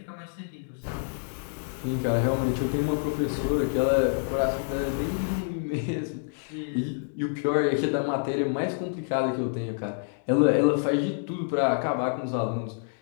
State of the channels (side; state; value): right; silent; digital silence